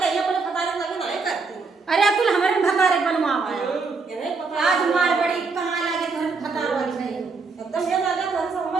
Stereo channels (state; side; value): quieter; left; 4.4 dB